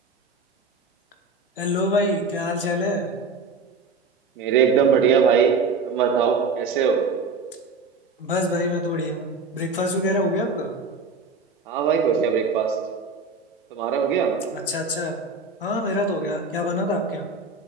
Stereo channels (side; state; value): left; quieter; 3.7 dB